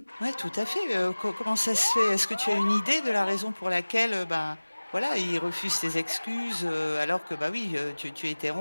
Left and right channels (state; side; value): inverted; both; correlation -1.00